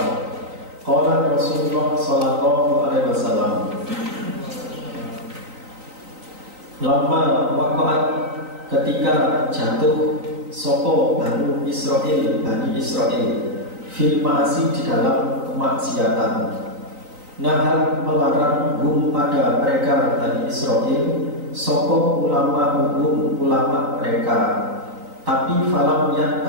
Rasulullah sallallahu alaihi wasallam lama waqa'at ketika jatuh sopo Bani Israel fil ma'asi di dalam kemaksiatan. Nahar melarang pada mereka Bani Israel sopo ulama mereka, tapi falam yang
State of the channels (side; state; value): left; late; 3.9 ms